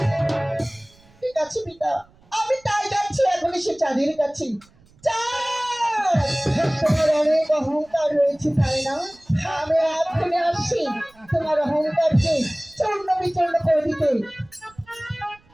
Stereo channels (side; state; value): right; noise; rumble, 30 dB below the sound